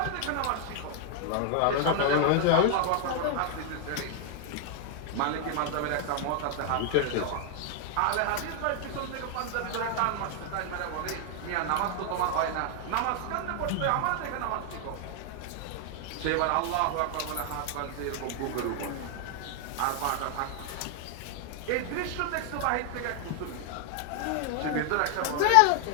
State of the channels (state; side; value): different; both; correlation 0.00